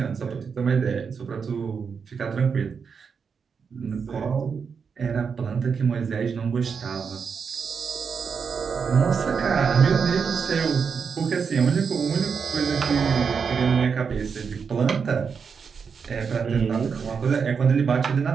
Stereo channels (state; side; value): quieter; left; 6.0 dB